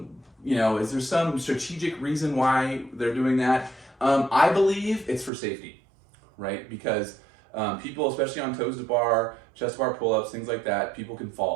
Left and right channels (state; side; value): drops out; left; at 5.3 s